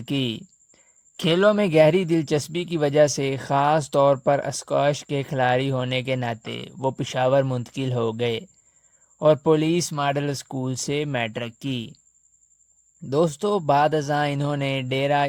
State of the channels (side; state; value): both; identical; correlation 1.00